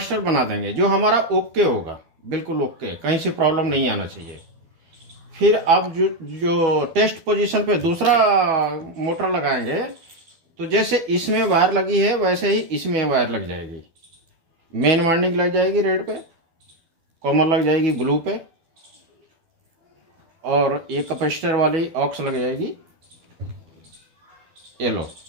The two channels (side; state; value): left; late; 12 ms